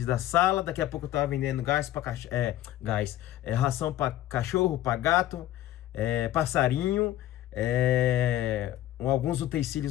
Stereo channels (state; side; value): quieter; right; 13.7 dB